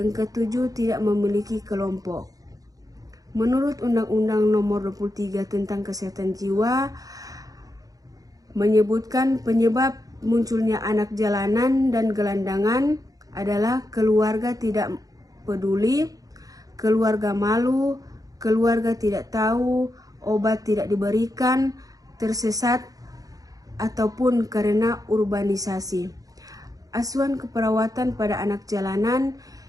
ketujuh, tidak memiliki kelompok. Menurut Undang-Undang Nomor 23 tentang Kesehatan Jiwa, menyebutkan penyebab munculnya anak jalanan dan gelandangan adalah keluarga tidak peduli, keluarga malu, keluarga tidak tahu, obat tidak diberikan, tersesat, ataupun karena urbanisasi. Asuhan keperawatan pada anak jalanan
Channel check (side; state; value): left; late; 0.17 ms